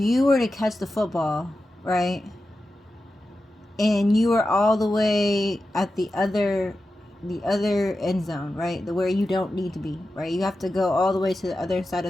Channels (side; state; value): both; normal; correlation 0.92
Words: were to catch the football, right, and you were all the way at the other end zone, right, where you don't need to be, right, you have to go all the way to the other side